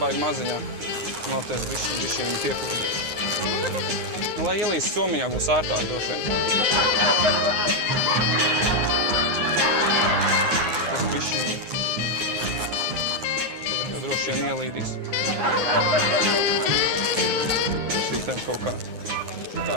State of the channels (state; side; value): late; left; 9.6 ms